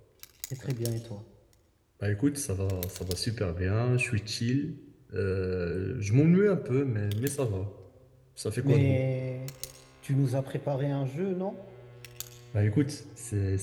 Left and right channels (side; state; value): both; identical; correlation 1.00